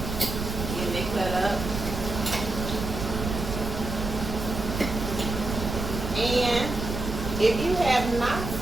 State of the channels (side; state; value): right; noise; rumble, 5 dB below the sound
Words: Getting it cut up. And if you have not